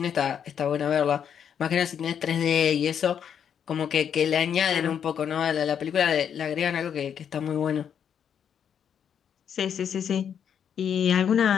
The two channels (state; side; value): quieter; right; 8.2 dB